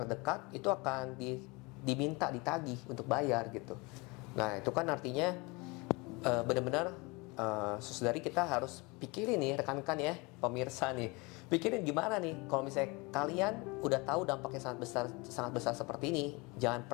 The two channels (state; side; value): quieter; right; 26.5 dB